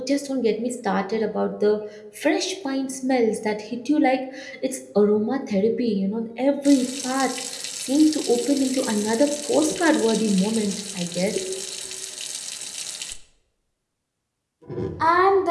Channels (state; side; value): identical; both; correlation 1.00